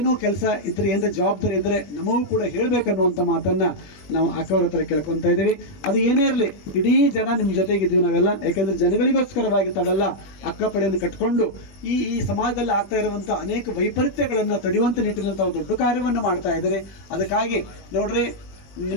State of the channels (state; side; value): late; right; 21 ms